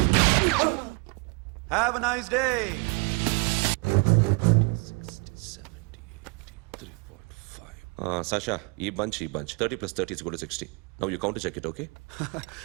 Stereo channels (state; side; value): quieter; left; 31.0 dB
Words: Have a nice day. 60, 70, 80, 3.5. Sasha, ఈ bunch 30 plus 30 is equal to 60. Now you count to check it, okay?